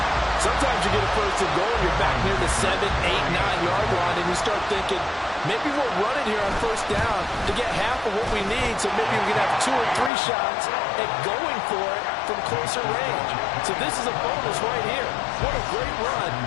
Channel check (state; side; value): drops out; right; at 10.1 s